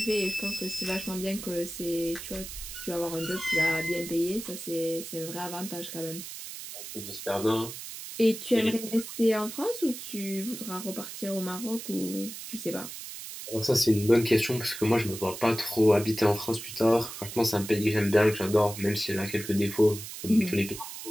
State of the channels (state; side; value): noise; right; hiss, 10 dB below the sound